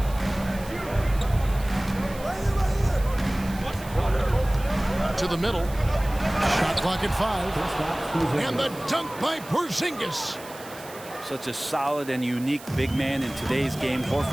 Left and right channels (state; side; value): noise; right; hiss, 18 dB below the sound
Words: To the middle. Shot clock at 5. And the dunk by Porzingis. Such a solid and unique big man in today's game.